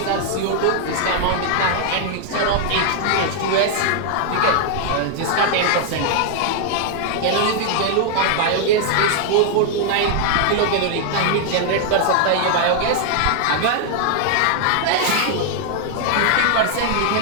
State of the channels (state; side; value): different; both; correlation 0.00